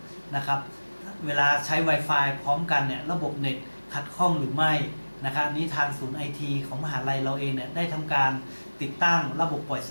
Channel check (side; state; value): both; inverted; correlation -1.00